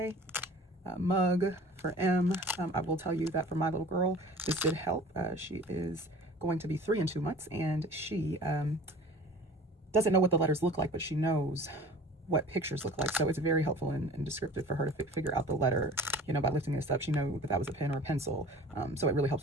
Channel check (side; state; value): both; normal; correlation 0.44